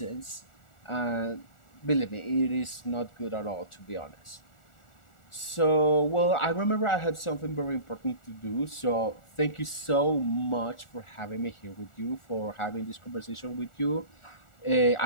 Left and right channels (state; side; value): late; right; 1.4 ms